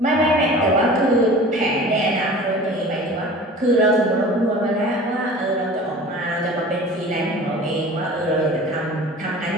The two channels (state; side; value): normal; both; correlation 0.41